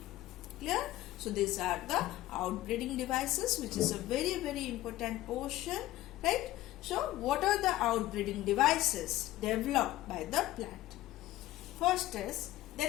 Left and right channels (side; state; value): right; quieter; 15.6 dB